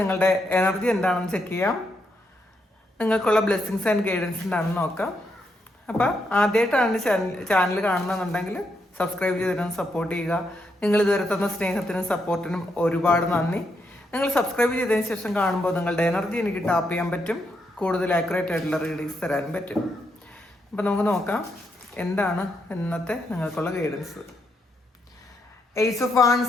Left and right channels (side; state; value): both; normal; correlation 0.79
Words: എനർജി എന്താണെന്ന് ചെക്ക് ചെയ്യാം. നിങ്ങൾക്കുള്ള ബ്ലെസ്സിങ്സ് ആൻഡ് ഗൈഡൻസ് എന്താണെന്ന് നോക്കാം. അപ്പോൾ ആദ്യമായിട്ടാണ് ചാനൽ കാണുന്നതെന്നുണ്ടെങ്കിൽ സബ്സ്ക്രൈബ് ചെയ്തിരുന്ന് സപ്പോർട്ട് ചെയ്യുക. നിങ്ങൾ ഇതുവരെ തന്ന സ്നേഹത്തിനും സപ്പോർട്ടിനും ഒരുപാട് നന്ദി. നിങ്ങൾ സബ്സ്ക്രൈബ് ചെയ്തതിന് ശേഷം കാണുമ്പോൾ നിങ്ങളുടെ എനർജി എനിക്ക് ടാപ്പ് ചെയ്യാൻ പറ്റും, കൂടുതൽ ആക്യുറേറ്റ് ആയിട്ടുള്ള റീഡിങ്സ് തരാനും പറ്റും. അപ്പം നമുക്ക് നോക്കാം എന്താണ് ഇന്നത്തെ നിങ്ങൾക്കുള്ള ഗൈഡൻസ്. എയ്സ് ഓഫ്